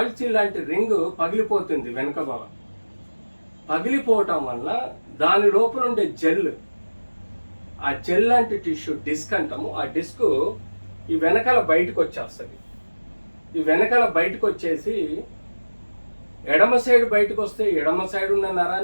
సీల్ లాంటి రింగ్ పగిలిపోతుంది వెనక భాగం. పగిలిపోవటం వల్ల దాని లోపల ఉండే జెల్, ఆ జెల్ లాంటి టిష్యూ డిస్క్ అంటాము, ఆ డిస్క్ ఈ వెనకాల బయటకు వచ్చేస్తుంది. ఈ వెనకాల బయటకు వచ్చేసి ఎడమ సైడ్ బయటకు వస్తే ఎడమ సైడ్ ఉన్న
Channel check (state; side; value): inverted; both; correlation -1.00